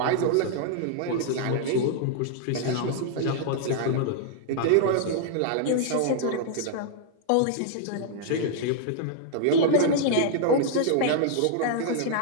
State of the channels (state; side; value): different; both; correlation -0.01